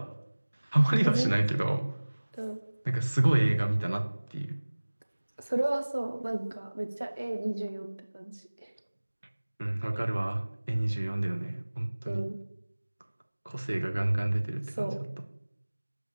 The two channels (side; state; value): both; inverted; correlation -1.00